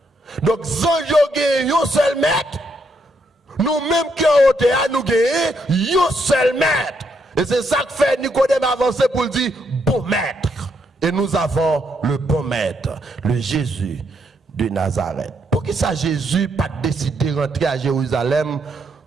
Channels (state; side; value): normal; both; correlation 0.76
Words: Donc, anges ont un seul maître. Nous-mêmes qui en hauteur, nous avons un seul maître. Et c'est ça que fait Nicodème avancer pour dire bon maître. Et nous avons le bon maître, le Jésus de Nazareth. Pour qui ça Jésus pas décidé de rentrer à Jérusalem